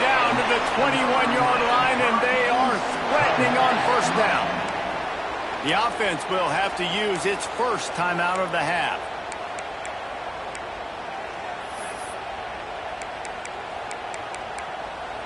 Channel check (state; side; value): identical; both; correlation 1.00